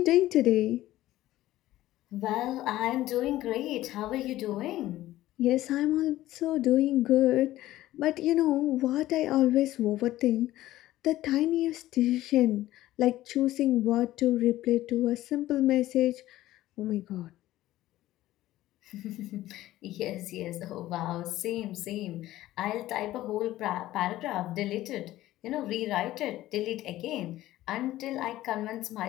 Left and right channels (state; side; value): quieter; right; 15.3 dB